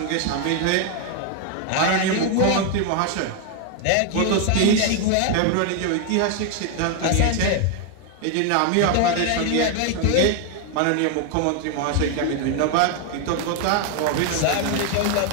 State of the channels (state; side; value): different; both; correlation 0.00